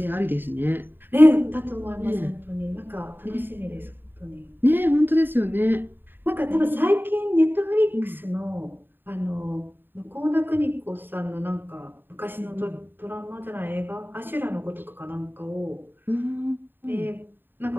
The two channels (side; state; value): left; late; 0.095 ms